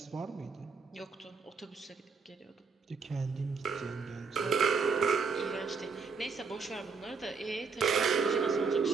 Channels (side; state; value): left; quieter; 5.0 dB